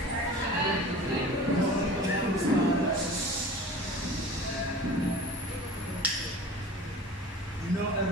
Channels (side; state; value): both; normal; correlation 0.40